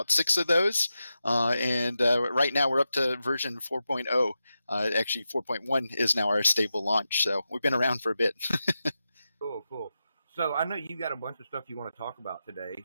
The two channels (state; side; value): inverted; both; correlation -0.90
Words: 6 of those. And right now we're up to version 4.0. Actually, 4.1 is now our stable launch. So we've been around for a bit. Cool. So I know you got a bunch of stuff you want to talk about today.